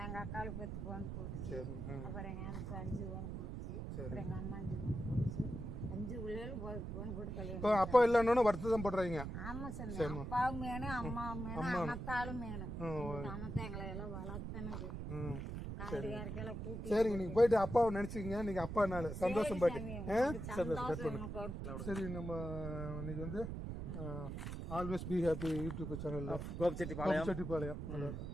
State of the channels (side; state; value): right; noise; rumble, 5 dB below the sound